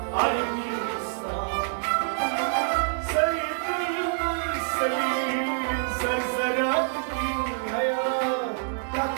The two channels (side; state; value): left; silent; 60 dB below the other